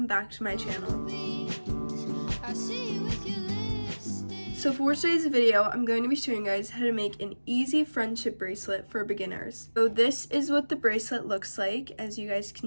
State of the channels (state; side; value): inverted; both; correlation -1.00